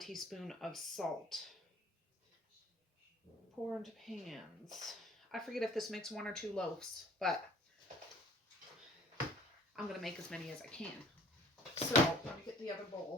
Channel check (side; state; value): both; normal; correlation 0.51